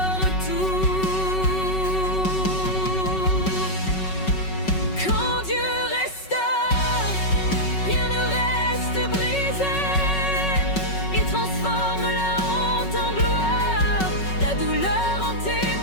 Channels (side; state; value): right; late; 5.3 ms